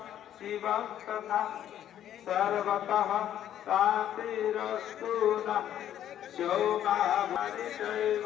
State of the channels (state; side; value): quieter; right; 10.9 dB